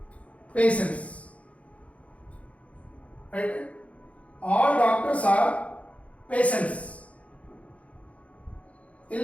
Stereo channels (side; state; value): right; late; 0.065 ms